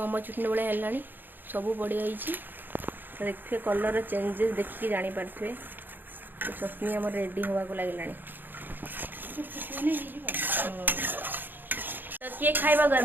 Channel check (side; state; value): left; late; 0.091 ms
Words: चटनी भाई है सब पड़ जाइए देखिए कलर चेंजेस देखिए जापारे तो चटनी आम रेडी हवा को लगे तो किए खाइबा